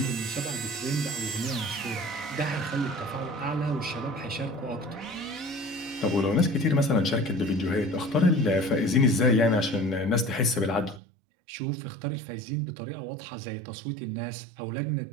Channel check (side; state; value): left; drops out; at 11.0 s